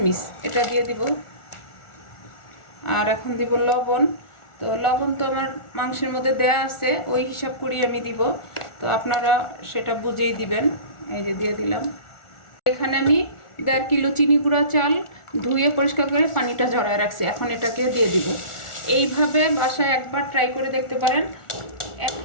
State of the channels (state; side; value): late; right; 1.4 ms